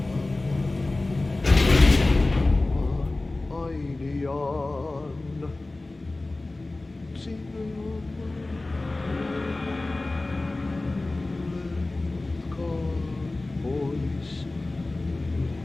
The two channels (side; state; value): right; quieter; 3.0 dB